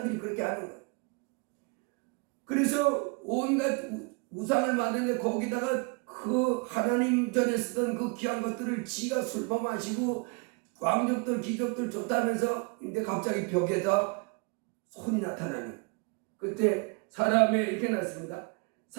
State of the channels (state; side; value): quieter; left; 31.4 dB